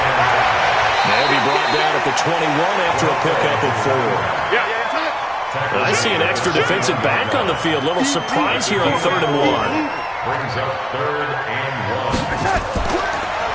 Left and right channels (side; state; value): both; identical; correlation 1.00